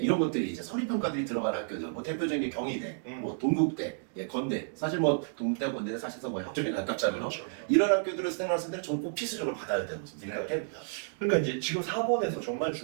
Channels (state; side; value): silent; left; digital silence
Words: 것들이 이제 서류 평가들이 들어가는 학교들. 뭐 대표적인 게 경희대, 뭐 동국대, 건대. 사실 뭐 동국대, 건대는 사실상 뭐 학종에 가깝잖아요. 그렇죠. 이런 학교들을 수행하는 학생들은 저는 꼭 필수적으로 받아야 된다고 생각을 합니다. 그러니까 이제 지금 4번에서 정말